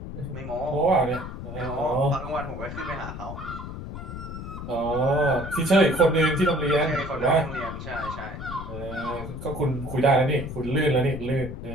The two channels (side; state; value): left; noise; rumble, 9 dB below the sound